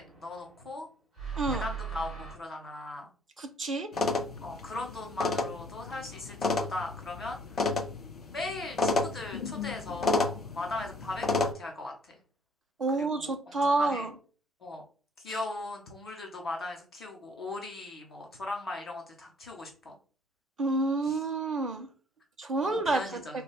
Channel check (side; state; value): both; normal; correlation 0.61